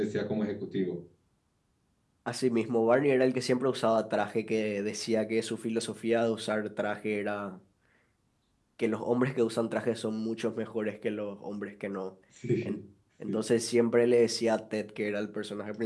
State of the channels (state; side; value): identical; both; correlation 1.00